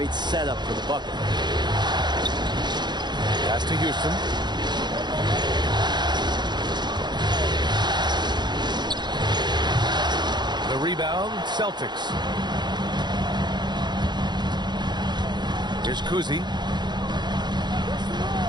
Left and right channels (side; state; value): left; late; 0.21 ms